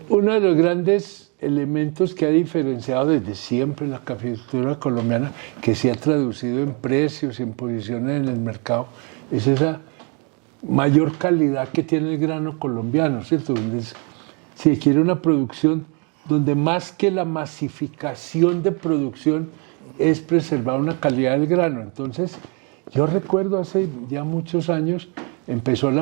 Uno de los grandes elementos que ha diferenciado desde siempre la caficultura colombiana, que se ha traducido en precios y en posiciones en el mercado, es esa mayor calidad que tiene el grano colombiano, ¿cierto? Se quiere una producción donde más que la masificación de producción es preservar una calidad del grano. Entonces, yo recuerdo hace ya muchos años, empezó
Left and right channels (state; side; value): quieter; left; 34.4 dB